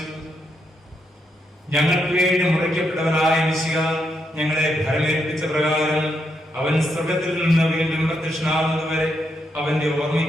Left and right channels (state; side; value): normal; both; correlation 0.80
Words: ഞങ്ങൾക്ക് വേണ്ടി മുറിക്കപ്പെട്ടവനായ മിശിഹ ഞങ്ങളെ ഭരമേൽപ്പിച്ച പ്രകാരം അവൻ സ്വർഗ്ഗത്തിൽ നിന്ന് വീണ്ടും പ്രത്യക്ഷനാകുന്നതുവരെ അവന്റെ